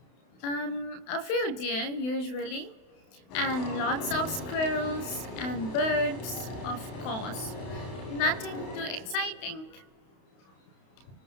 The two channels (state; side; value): late; right; 32 ms